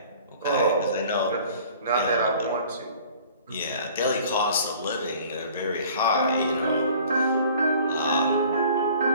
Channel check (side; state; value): both; inverted; correlation -0.50